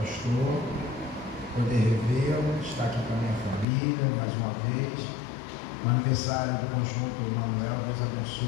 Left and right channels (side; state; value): right; drops out; at 3.7 s